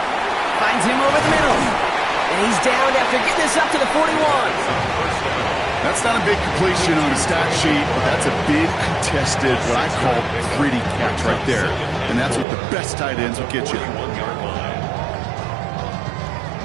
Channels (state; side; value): drops out; left; at 12.5 s